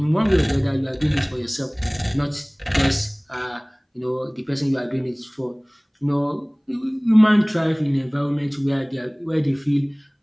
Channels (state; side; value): identical; both; correlation 1.00